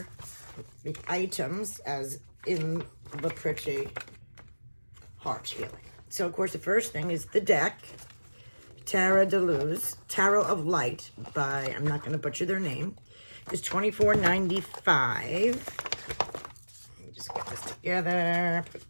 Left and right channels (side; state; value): both; inverted; correlation -1.00